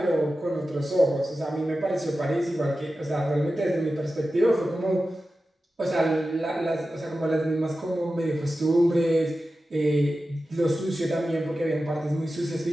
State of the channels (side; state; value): both; normal; correlation 0.93